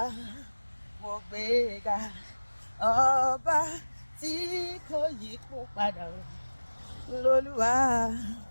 mo gbé ga. Ọba tí kò yí padà o, lolúwa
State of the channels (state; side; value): inverted; both; correlation -1.00